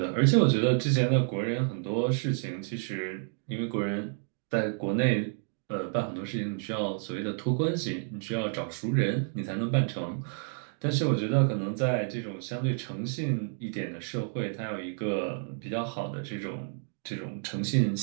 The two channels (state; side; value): silent; left; 57 dB below the other